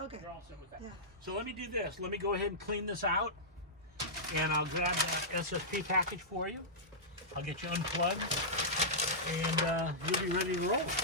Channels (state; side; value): normal; both; correlation -0.13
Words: You're all set with that. Yeah. So let me do this. Let me go ahead and clean this out, and I'll grab that SSP package for you. I'll get you unplugged, and you'll be ready to roll.